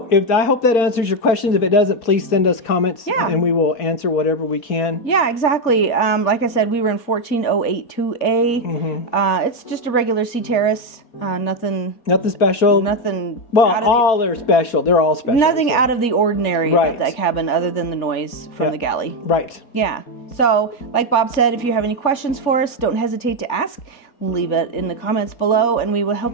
I hope that answers your questions. If it doesn't, please send us comments, and we will answer whatever we can. Yeah, exactly. Like I said, we were in 14082A. Mm-hmm. It's just a regular sea terrace. Nothing special. Nothing. Well, all are special. They're all special. Nothing out of the ordinary about that cabin, other than the noise from the galley. Right. Yeah. So, like Bob said, if you have any questions for us, don't hesitate to ask. Leave it in the comments below, and we will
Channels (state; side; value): late; right; 4.2 ms